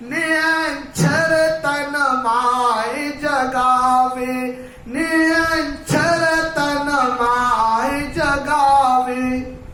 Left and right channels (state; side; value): identical; both; correlation 1.00